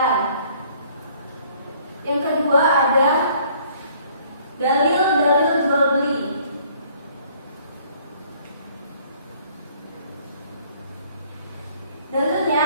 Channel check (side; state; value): both; inverted; correlation -0.59